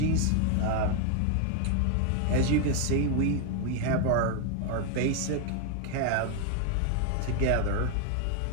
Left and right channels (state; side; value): different; both; correlation 0.01